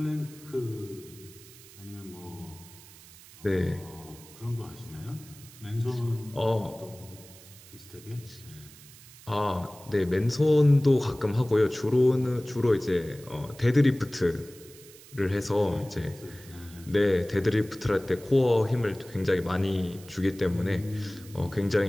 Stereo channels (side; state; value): right; noise; hiss, 20 dB below the sound